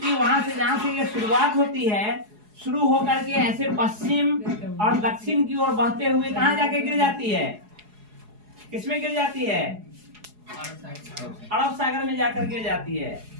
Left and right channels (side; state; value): left; late; 4.8 ms